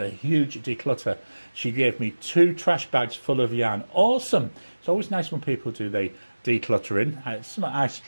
huge declutter. She gave me 2 trash bags full of yarn. Awesome. It's always nice when people do the decluttering. It's something I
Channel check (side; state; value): both; inverted; correlation -1.00